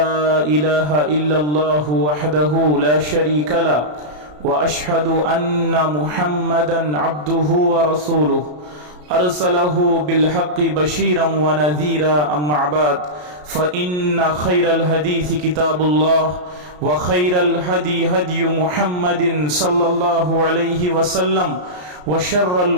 إله إلا الله وحده لا شريك له وأشهد أن محمدا عبده ورسوله أرسله بالحق بشيرا ونذيرا أما بعد فإن خير الحديث كتاب الله وخير الهدي هدي محمد صلى الله عليه وسلم وشر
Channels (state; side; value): late; left; 33 ms